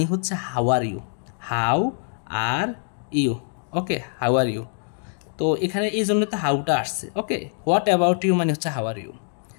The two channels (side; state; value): right; silent; 61 dB below the other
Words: হচ্ছে how are you, how are you. Okay, how are you, তো এখানে এই জন্য তো হাউটা আসছে। ওকে, হোয়াট অ্যাবাউট ইউ মানে হচ্ছে how are you.